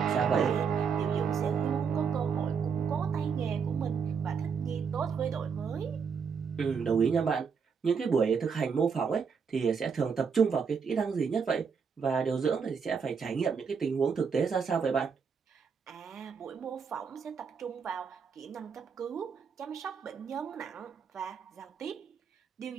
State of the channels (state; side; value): quieter; left; 6.1 dB